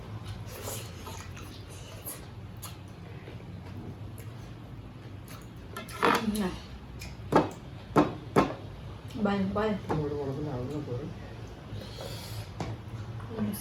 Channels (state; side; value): identical; both; correlation 1.00